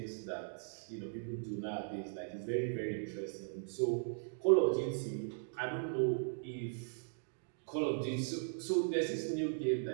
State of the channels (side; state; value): left; silent; digital silence